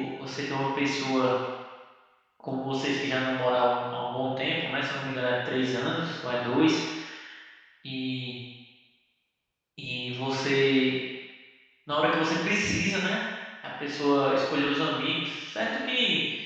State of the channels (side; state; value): both; identical; correlation 1.00